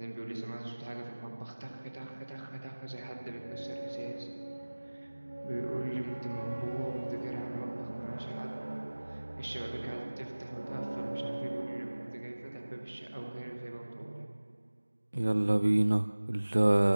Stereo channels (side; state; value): both; inverted; correlation -1.00